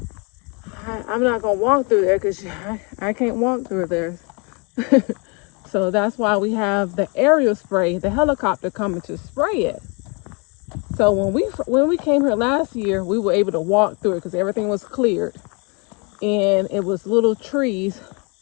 I'm not gonna walk through there because I can't walk through there. So that's why we have the aerial spray, the helicopter coming to spray it. So when we came here last year, we were able to walk through it because everything was cleared, and it was little trees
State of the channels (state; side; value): quieter; right; 32.7 dB